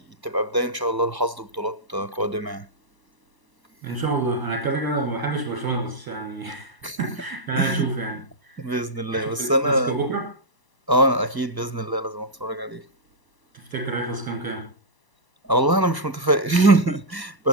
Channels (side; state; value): left; late; 1.0 ms